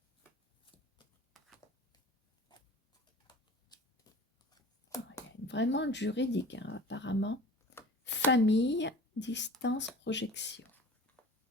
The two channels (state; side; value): normal; both; correlation 0.41